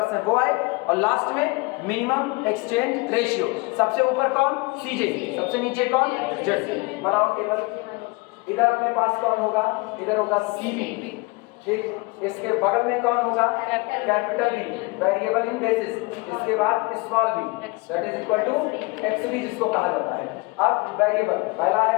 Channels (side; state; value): right; quieter; 26.1 dB